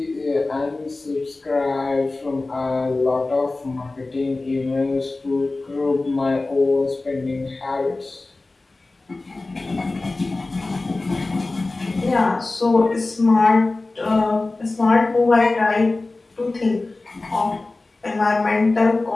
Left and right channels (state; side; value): quieter; right; 3.2 dB